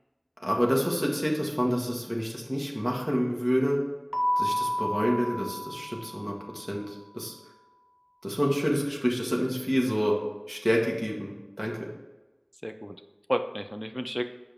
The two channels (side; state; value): both; identical; correlation 1.00